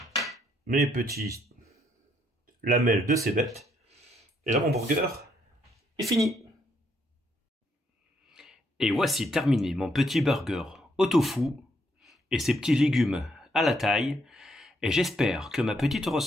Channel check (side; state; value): both; normal; correlation 0.73